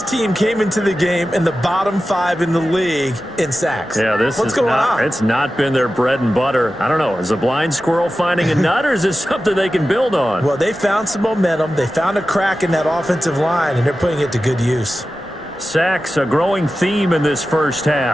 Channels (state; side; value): noise; right; rumble, 27 dB below the sound